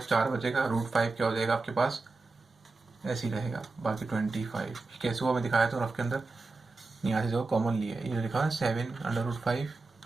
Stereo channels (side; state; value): left; quieter; 3.7 dB